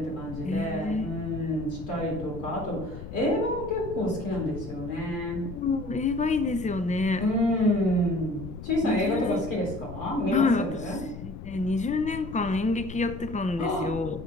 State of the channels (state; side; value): noise; left; rumble, 11 dB below the sound